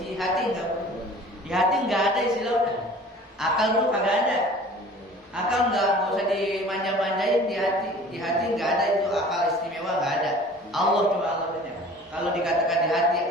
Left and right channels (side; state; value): both; normal; correlation 0.45